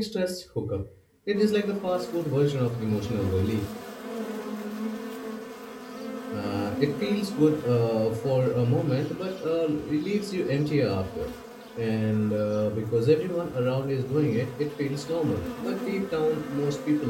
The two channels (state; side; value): identical; both; correlation 1.00